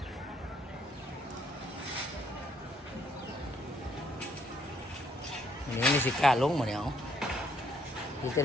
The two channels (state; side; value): normal; both; correlation 0.68